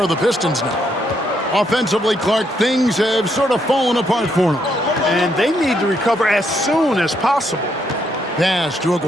the Pistons now. Offensively, Clark, things have sort of fallen apart for them. And they need to recover as soon as possible. Pass to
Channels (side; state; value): both; normal; correlation 0.75